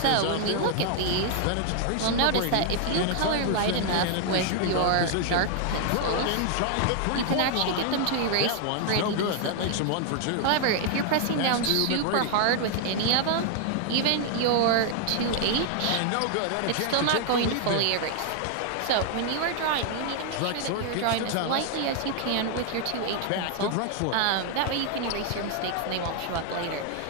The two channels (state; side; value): different; both; correlation 0.00